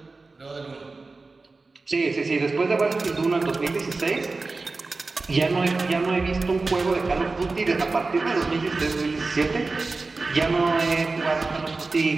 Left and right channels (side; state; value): left; quieter; 3.7 dB